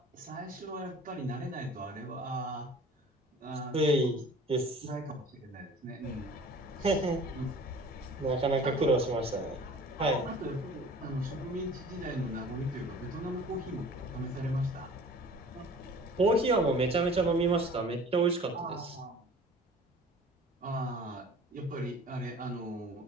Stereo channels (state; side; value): normal; both; correlation 0.46